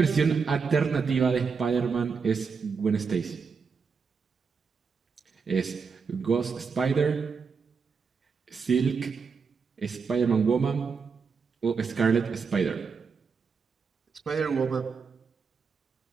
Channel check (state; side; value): quieter; left; 5.5 dB